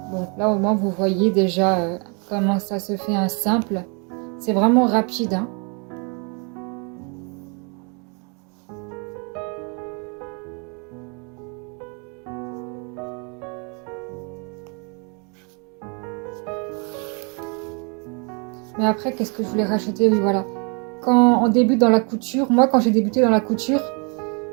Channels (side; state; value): left; quieter; 34.9 dB